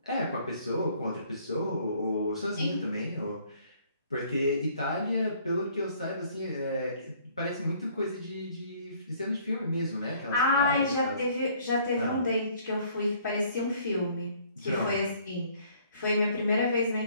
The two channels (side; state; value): both; inverted; correlation -0.60